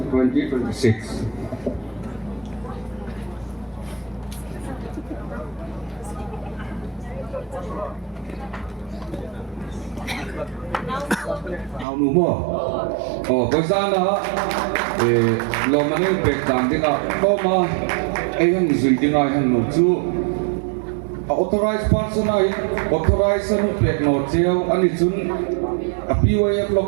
2026. Nào nụ mò, với sao đó, lo mà nên việc làm thế nào, có mà ai hàng duy thế này hàng nụ chú, authorized person ay authorized ano pêkna treo ani chun a PYF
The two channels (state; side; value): drops out; left; at 11.9 s